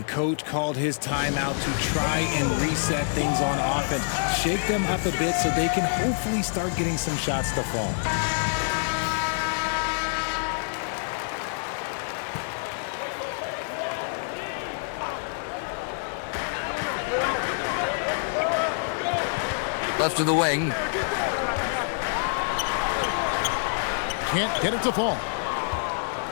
coach called his timeout to try and reset things on offense, shake them up a bit so they can hopefully start getting some shots to fall. Left to the wing. Can't get it to fall.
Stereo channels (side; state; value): right; silent; 60 dB below the other